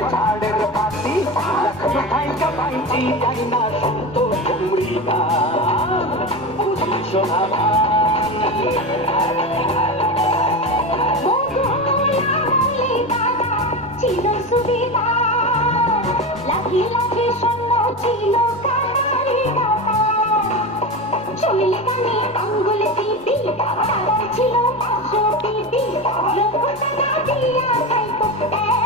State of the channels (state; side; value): normal; both; correlation 0.22